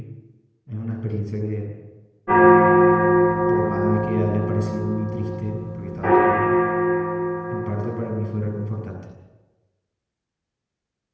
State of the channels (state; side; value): identical; both; correlation 1.00